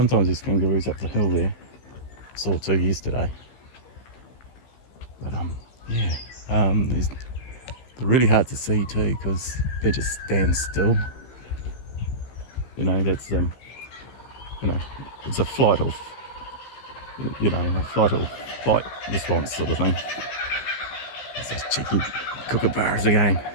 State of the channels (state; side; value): late; right; 15 ms